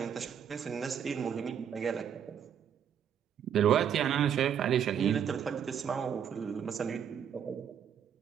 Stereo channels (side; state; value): left; quieter; 8.5 dB